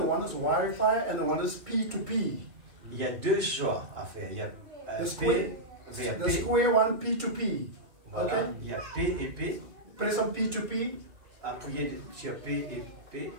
one is Wi-Fi and the one is P2P. Il y a deux choix à faire. Il y a The P square, vers the P. square one P2P. Voilà. Okay? Il y a P et P. Press on P2P. Appuyez sur P et P.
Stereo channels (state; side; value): late; left; 2.7 ms